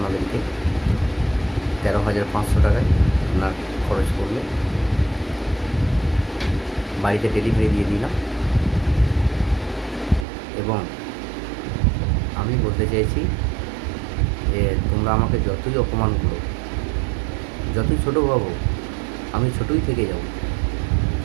13,500 টাকায় আপনার খরচ করলে বাড়িতে ডেলিভারি দিয়ে দিলাম। এবং আমি বলতে চাইছি যে তোমরা আমাকে যতই অপমান করো, যতই ছোটো ভাবো, আমি ছোটোই থেকে যাব।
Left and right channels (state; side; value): drops out; left; at 10.2 s